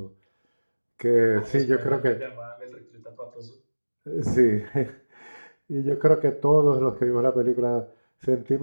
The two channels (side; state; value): both; inverted; correlation -1.00